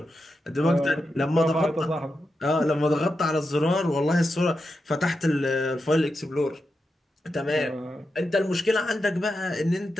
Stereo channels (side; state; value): both; normal; correlation 0.88